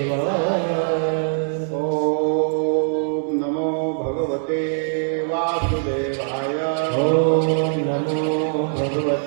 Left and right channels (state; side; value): silent; left; digital silence